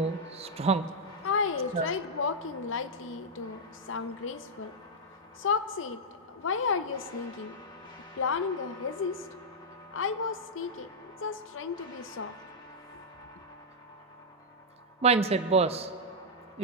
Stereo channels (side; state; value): both; normal; correlation -0.05